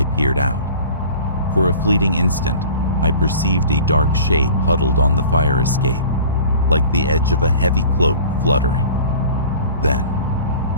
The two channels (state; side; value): inverted; both; correlation -0.42